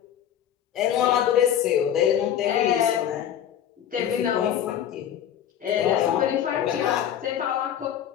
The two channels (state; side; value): quieter; right; 10.0 dB